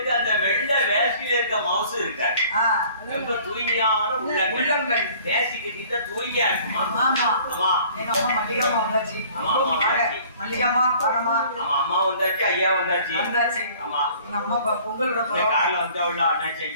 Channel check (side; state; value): both; inverted; correlation -0.53